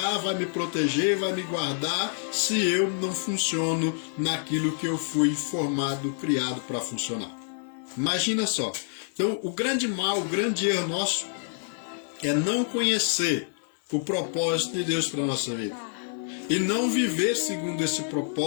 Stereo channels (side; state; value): right; silent; 57 dB below the other